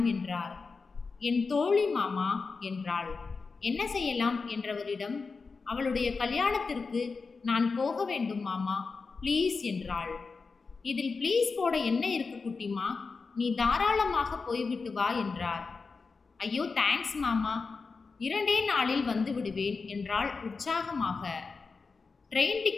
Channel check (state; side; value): quieter; right; 4.5 dB